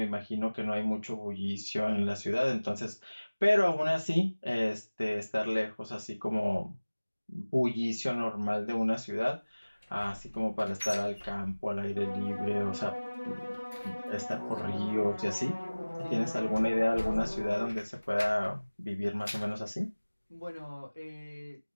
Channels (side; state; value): both; inverted; correlation -1.00